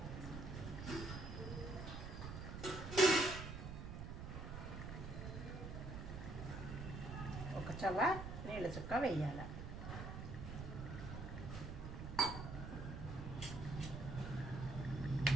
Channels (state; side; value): noise; right; rumble, 7 dB below the sound